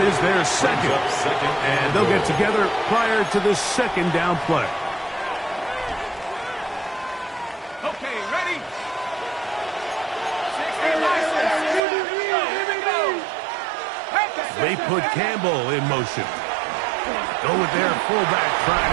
is their second. And they'll get together prior to the second down play. Okay, ready? They put Campbell in motion. Go with their fullback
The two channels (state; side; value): drops out; left; at 11.8 s